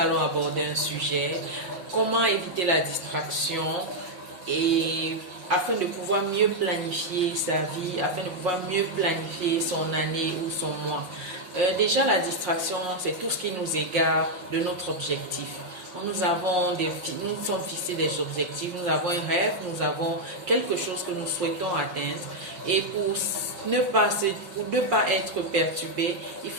aborder un sujet, comment éviter la distraction et afin de pouvoir mieux planifier sa vie, afin de pouvoir mieux planifier son année ou son mois. Déjà, la distraction, c'est tout ce qui nous égare de notre objectif. Nous sommes fixés des objectifs, nous avons un rêve, nous avons quelque chose que nous souhaitons atteindre. Et pour ne pas être perturbé, il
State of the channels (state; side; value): late; left; 5.6 ms